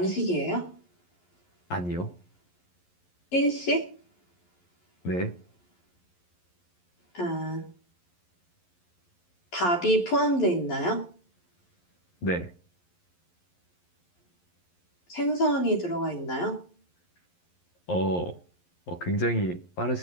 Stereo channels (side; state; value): right; late; 11 ms